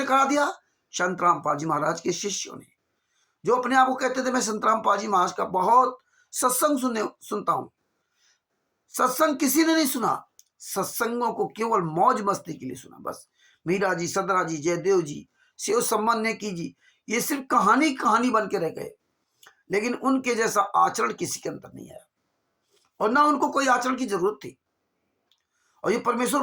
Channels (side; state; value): both; identical; correlation 1.00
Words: करा दिया? संतराम पाजी महाराज के शिष्यों ने, जो अपने आप को कहते थे मैं संतराम पाजी महाराज का बहुत सत्संग सुनता हूं। सत्संग किसी ने नहीं सुना, सत्संगों को केवल मौज मस्ती के लिए सुना। बस मीरा जी, सदरा जी, जयदेव जी, शिव सम्मान नेकी जी, ये सिर्फ कहानी कहानी बन के रह गए, लेकिन उनके जैसा आचरण किसी के अंदर नहीं आया, और ना उनको कोई आचरण की जरूरत थी। और ये